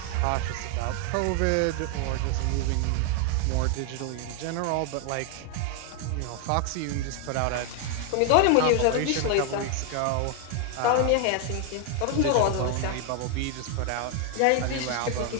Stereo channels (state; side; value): different; both; correlation 0.01